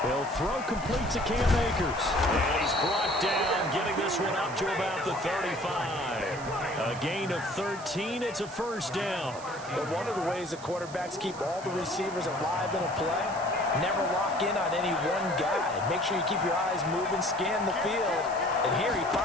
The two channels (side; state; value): right; noise; hiss, 17 dB below the sound